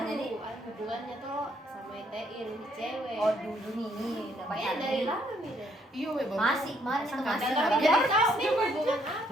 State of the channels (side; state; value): both; normal; correlation 0.69